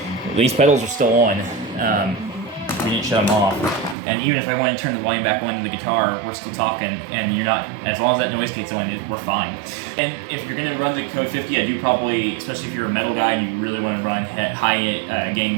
these pedals are still on. We didn't shut them off. And even if I want to turn the volume back on to the guitar, we're still talking, and you're not, as long as that noise gate's on, we're fine. And if you're gonna run the Code 50, I do probably, especially if you're a metal guy and you really want to run high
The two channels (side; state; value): left; drops out; at 4.0 s